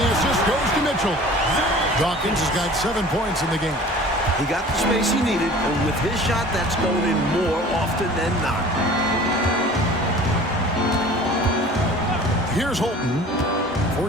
assist goes to Mitchell. Dawkins has got 7 points in the game. He got the space he needed, and with his shot, that's going in more often than not. Here's Holton.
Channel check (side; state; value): both; normal; correlation 0.44